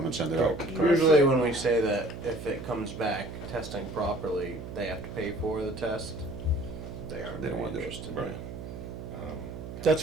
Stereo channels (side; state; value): right; noise; hum, 10 dB below the sound